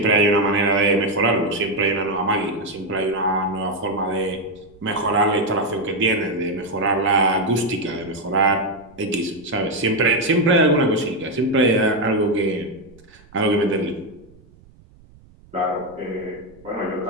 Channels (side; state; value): right; noise; rumble, 26 dB below the sound